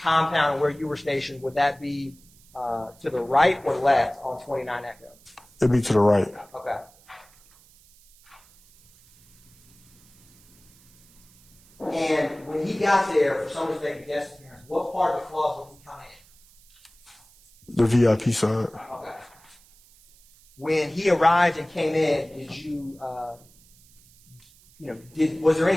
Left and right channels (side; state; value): right; noise; hiss, 28 dB below the sound